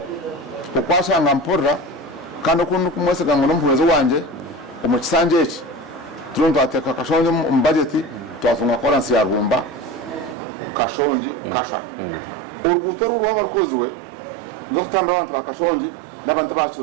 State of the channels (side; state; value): left; drops out; at 10.4 s